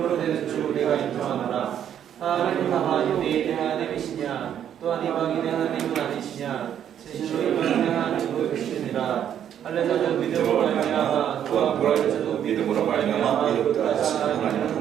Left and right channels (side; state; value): left; quieter; 9.7 dB